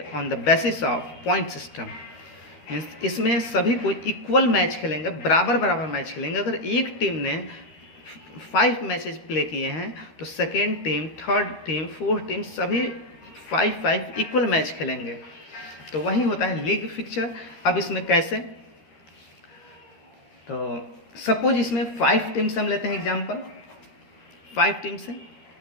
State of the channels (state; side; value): late; right; 13 ms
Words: on the basis of point system. Means इसमें सभी को equal match खेलेंगे, बराबर बराबर match खेलेंगे। अगर एक team ने 5 मैचेज प्ले किए हैं तो second team, third team, fourth team सभी 5 इक्वल मैच खेलेंगे। तो वही होता है लीग फिक्चर। अब इसमें कैसे? तो सपोज इसमें 5 टीम से हम लेते हैं एग्जांपल, 5 टीम से।